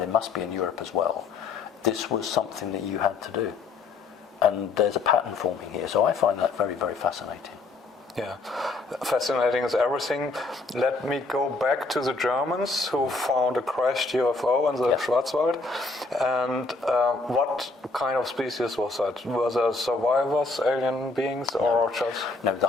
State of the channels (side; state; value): right; quieter; 3.7 dB